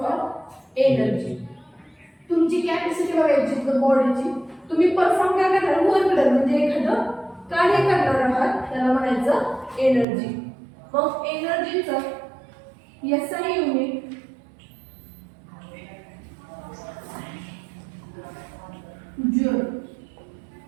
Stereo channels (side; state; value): left; drops out; at 10.1 s